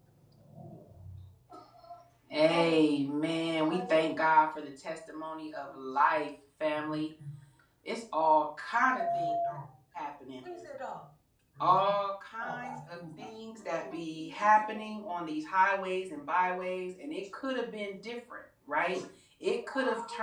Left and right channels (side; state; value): both; identical; correlation 1.00